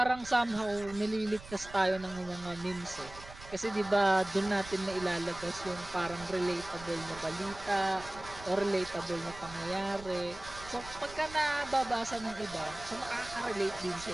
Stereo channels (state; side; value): noise; right; rumble, 16 dB below the sound